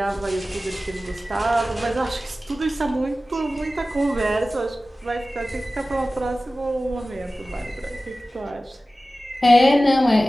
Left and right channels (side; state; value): both; normal; correlation 0.96